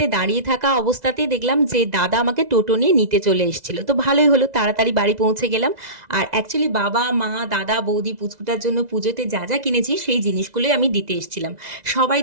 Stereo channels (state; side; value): late; left; 2.0 ms